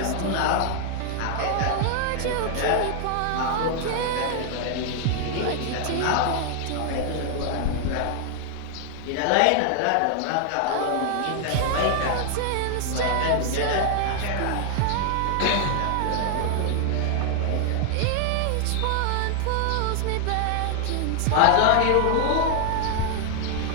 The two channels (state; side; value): different; both; correlation 0.00